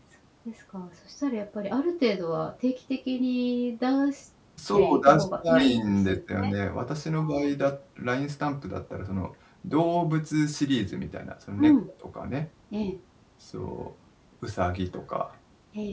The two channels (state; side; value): identical; both; correlation 1.00